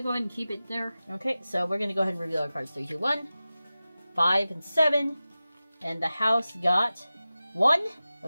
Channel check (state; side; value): inverted; both; correlation -0.95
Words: go ahead and keep it there. Okay, so we're gonna go ahead and reveal our cards. 3, 2, 1. 5 and 7. And the house got 1.